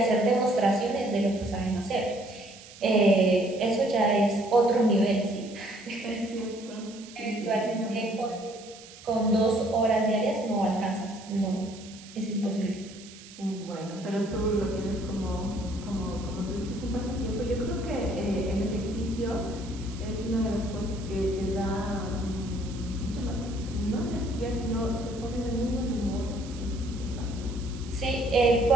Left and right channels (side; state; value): right; noise; hiss, 18 dB below the sound